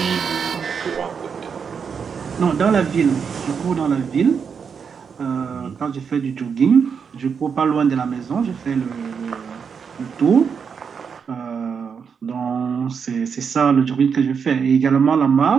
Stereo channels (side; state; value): left; quieter; 6.4 dB